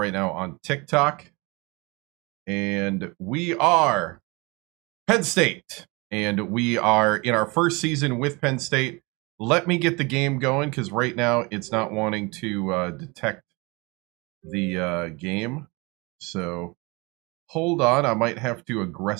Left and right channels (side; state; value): left; quieter; 26.7 dB